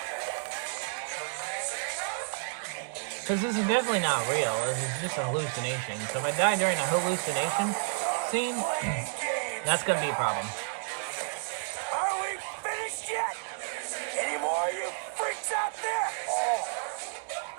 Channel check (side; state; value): left; silent; 57 dB below the other